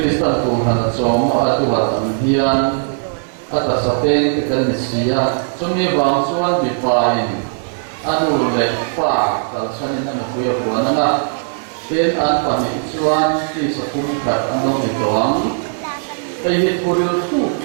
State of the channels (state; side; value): silent; left; digital silence